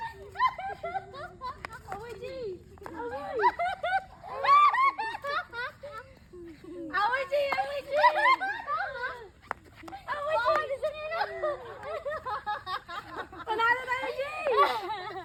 Away din. Away. Away din. Away din. Away din. Panalo tayo, Jay!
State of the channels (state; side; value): identical; both; correlation 1.00